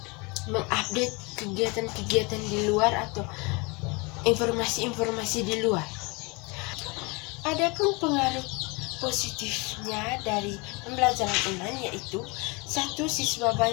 mengupdate kegiatan-kegiatan di luar atau informasi-informasi di luar. Adapun pengaruh positifnya dari pembelajaran online, yaitu satu, siswa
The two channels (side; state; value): right; quieter; 28.0 dB